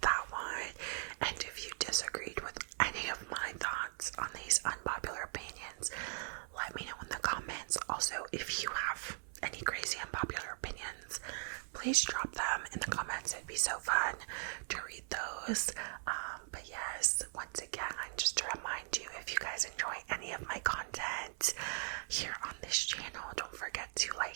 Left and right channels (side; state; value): left; silent; 51 dB below the other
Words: that one, and if you disagreed with any of my thoughts on these unpopular opinions, let me know in the comments. Also, if you have any crazy unpopular opinions, please drop them in the comments. It'd be so fun to read those. But yes, once again, just to remind you, if you guys enjoy any of my content here on this channel, don't forget to